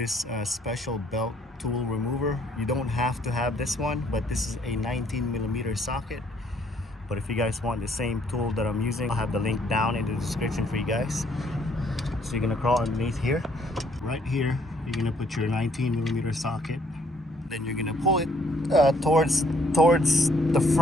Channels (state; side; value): normal; both; correlation 0.65